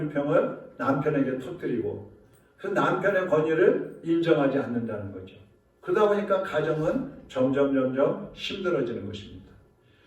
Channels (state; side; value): identical; both; correlation 1.00